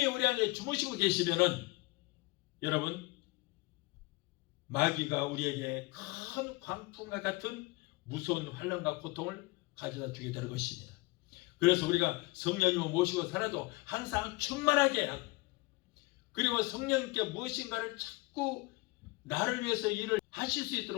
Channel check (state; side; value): quieter; right; 23.4 dB